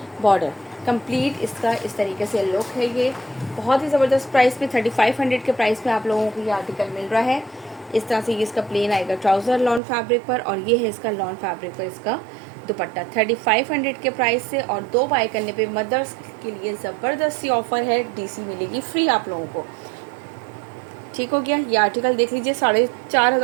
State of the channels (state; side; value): drops out; left; at 9.8 s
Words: बॉर्डर। कंप्लीट इसका इस तरीके से लुक है। ये बहुत ही ज़बरदस्त प्राइस में 3500 के प्राइस में आप लोगों को ये आर्टिकल मिल रहा है। इस तरह से ये इसका प्लेन आएगा ट्राउज़र लॉन फैब्रिक पर, और ये है इसका लॉन फैब्रिक पर इसका दुपट्टा 3500 के प्राइस से। और 2 बाय करने पे मदर्स के लिए ज़बरदस्ती ऑफर है, DC मिलेगी फ्री आप लोगों को। ठीक हो गया। ये आर्टिकल देख लीजिए,